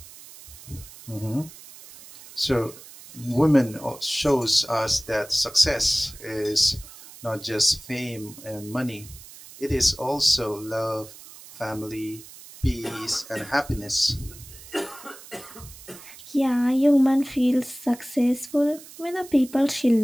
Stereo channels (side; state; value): right; noise; hiss, 18 dB below the sound